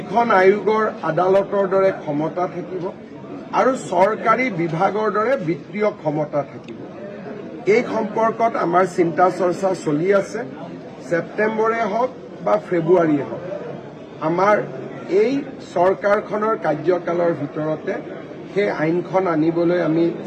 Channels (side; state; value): both; identical; correlation 1.00